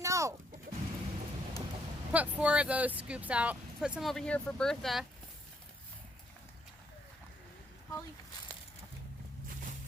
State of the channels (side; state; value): both; normal; correlation 0.71